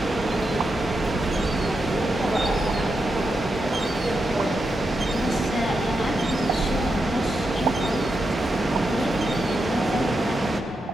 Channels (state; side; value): normal; both; correlation 0.86